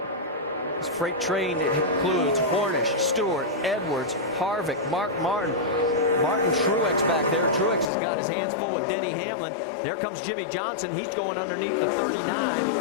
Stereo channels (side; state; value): right; drops out; at 7.9 s